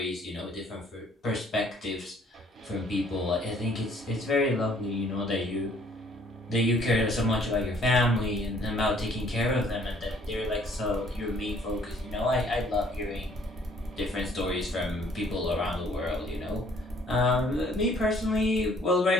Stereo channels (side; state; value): both; normal; correlation 0.61